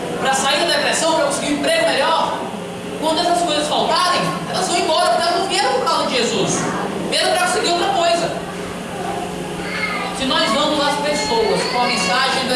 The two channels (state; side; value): identical; both; correlation 1.00